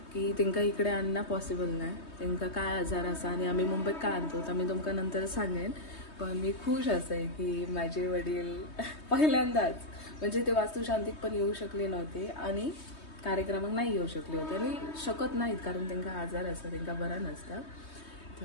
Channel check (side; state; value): right; late; 3.2 ms